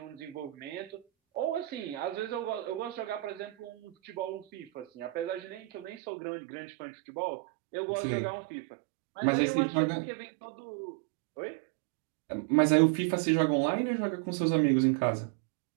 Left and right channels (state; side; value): drops out; left; at 6.0 s